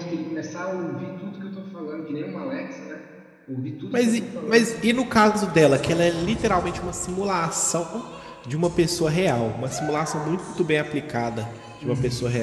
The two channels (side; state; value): both; identical; correlation 1.00